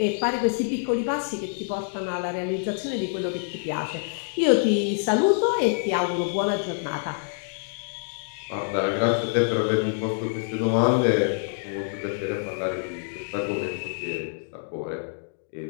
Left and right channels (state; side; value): silent; right; digital silence